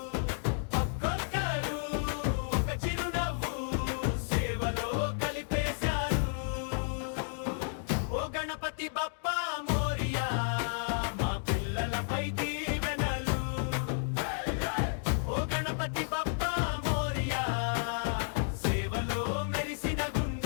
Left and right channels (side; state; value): right; silent; digital silence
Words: ఒక్కొక్కరు ఒక చిరునవ్వు సేవలో కలిపేశారు. ఓ గణపతి బప్పా మోరియా, మా పిల్లలపై దీవెనలు. ఓ గణపతి బప్పా మోరియా, సేవలో మెరిసిన